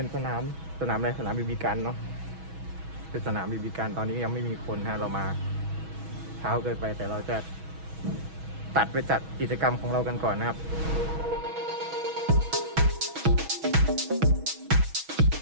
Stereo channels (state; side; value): late; left; 6.2 ms